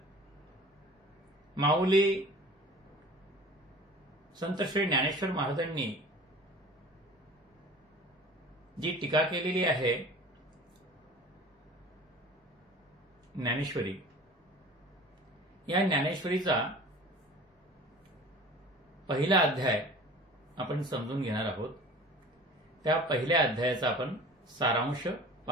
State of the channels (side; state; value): both; normal; correlation 0.42